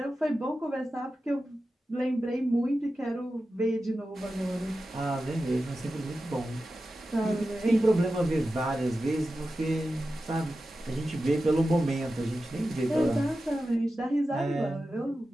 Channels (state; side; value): normal; both; correlation 0.93